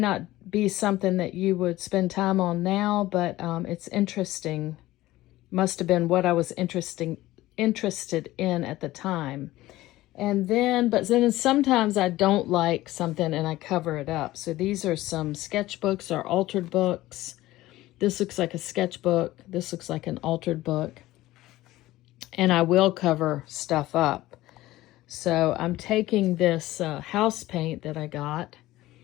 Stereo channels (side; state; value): right; quieter; 16.8 dB